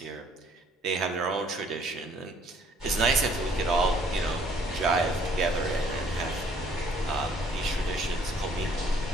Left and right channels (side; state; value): both; normal; correlation 0.61